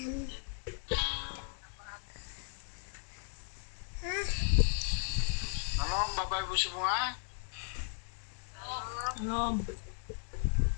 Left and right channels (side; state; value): right; silent; 54 dB below the other